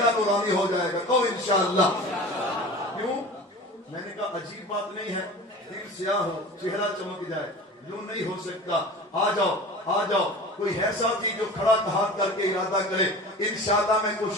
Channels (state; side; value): normal; both; correlation 0.37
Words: نورانی ہو جائے گا. تو انشاءاللہ. کیوں؟ میں نے کہا عجیب بات نہیں ہے, دل سیاہ ہو چہرہ چمک جائے, یوں نہیں ہو سکتا. آ جاؤ, آ جاؤ. کوئی ہے ساتھی جو کھڑا ہاتھ کر کے ارادہ کرے؟ انشاءاللہ میں